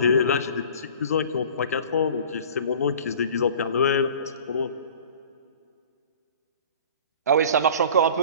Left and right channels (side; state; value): both; inverted; correlation -0.44